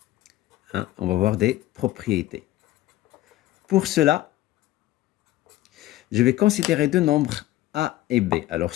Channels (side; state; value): right; quieter; 15.7 dB